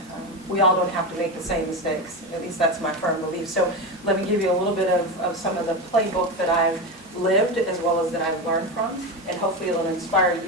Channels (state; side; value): normal; both; correlation 0.18